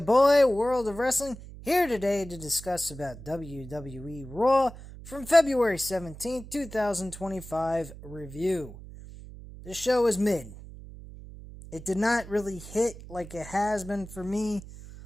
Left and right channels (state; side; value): noise; right; hum, 15 dB below the sound